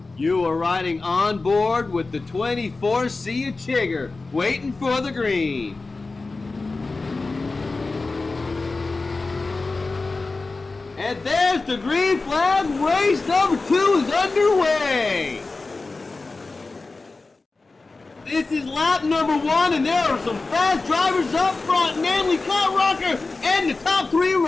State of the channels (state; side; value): quieter; right; 3.6 dB